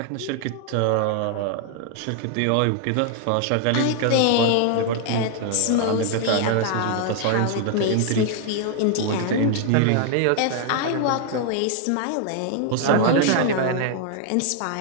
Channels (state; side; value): different; both; correlation 0.00